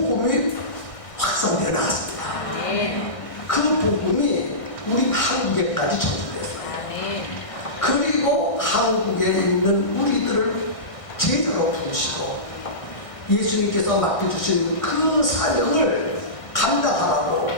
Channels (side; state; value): right; late; 1.6 ms